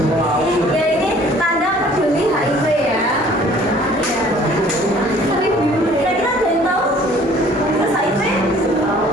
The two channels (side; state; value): both; normal; correlation 0.54